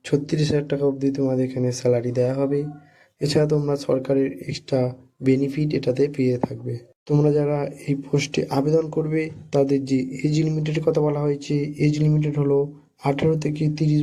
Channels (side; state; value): both; identical; correlation 1.00